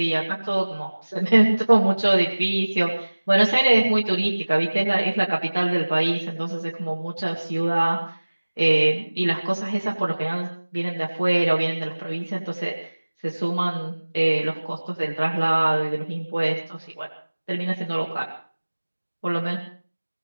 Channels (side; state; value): both; inverted; correlation -1.00